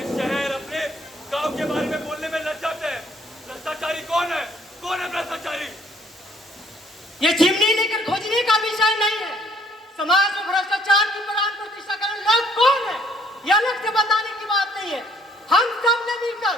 शहर, अपने गांव के बारे में बोलने में लज्जाते हैं। भ्रष्टाचारी कौन है? कौन है भ्रष्टाचारी? ये चिमनी लेकर खोजने का विषय नहीं है। समाज में भ्रष्टाचार की प्राण प्रतिष्ठा करने लोग कौन है, यह अलग से बताने की बात नहीं है। हम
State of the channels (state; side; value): normal; both; correlation 0.64